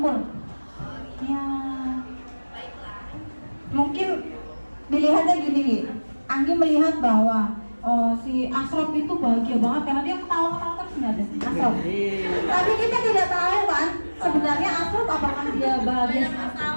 Ya, mungkin dilihatnya gini. Anggi melihat bahwa si Asrop itu bahagia banget karena dia ketawa-ketawa terus nggak ada Asrop. Tapi kita tidak tahu kan sebenarnya Asrop apakah dia bahagia?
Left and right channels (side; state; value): both; inverted; correlation -1.00